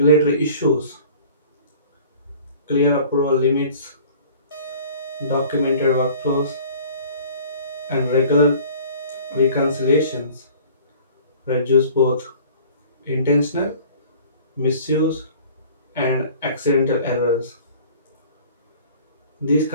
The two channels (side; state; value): both; inverted; correlation -0.48